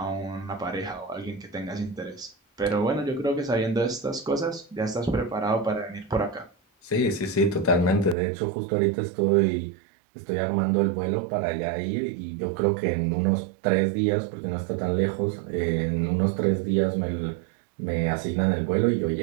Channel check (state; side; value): drops out; left; at 8.2 s